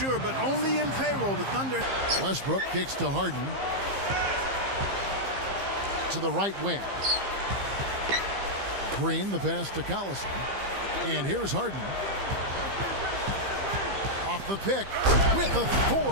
but only in payroll. The Thunder. Westbrook kicks to Harden. To the right wing. Green, the pass to Collison. And here's Harden. Off the pick with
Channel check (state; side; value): late; left; 15 ms